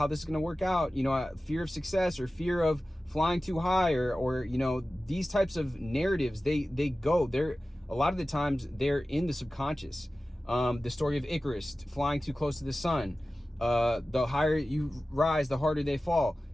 this is going to work out, you know, fear of success or fear of flying too high, or you know, these types of narratives, they're a lot of the times they're in the subconscious. The story of Icarus flying too close to the sun, the higher you rise, the harder they fall.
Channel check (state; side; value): normal; both; correlation 0.96